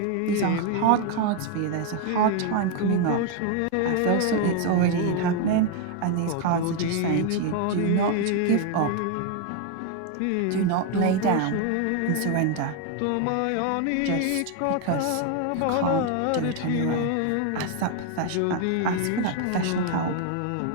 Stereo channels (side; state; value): both; different; correlation 0.01